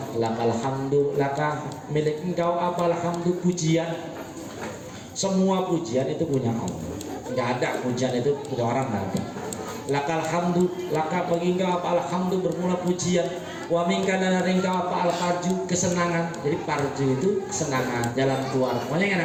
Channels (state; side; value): identical; both; correlation 1.00